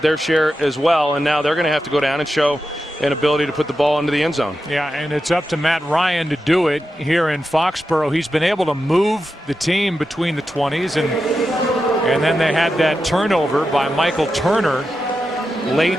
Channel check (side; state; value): both; normal; correlation 0.89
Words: their share as well, and now they're going to have to go down and show an ability to put the ball into the end zone. Yeah, and it's up to Matt Ryan to do it here in Foxborough. He's been able to move the team between the 20s, and then they had that turnover by Michael Turner late